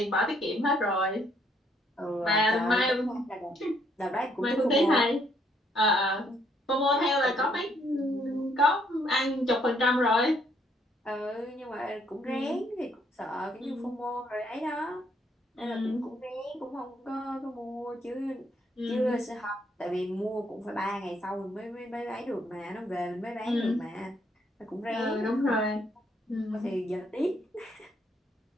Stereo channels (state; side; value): normal; both; correlation 0.69